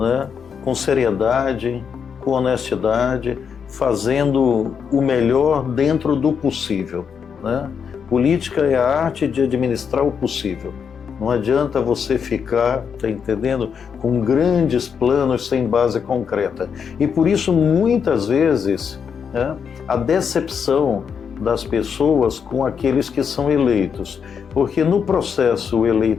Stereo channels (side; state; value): right; quieter; 6.8 dB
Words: Com seriedade, com honestidade, fazendo o melhor dentro do possível, né? Política é a arte de administrar o possível. Não adianta você ficar, tá entendendo, com grandes planos sem base concreta. E por isso, muitas vezes, né, a decepção das pessoas com aqueles que são eleitos. Porque no processo